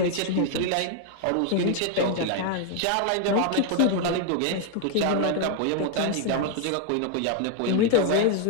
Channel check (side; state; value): both; different; correlation 0.00